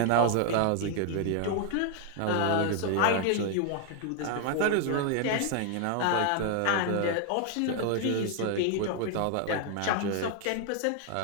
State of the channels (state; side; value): different; both; correlation 0.00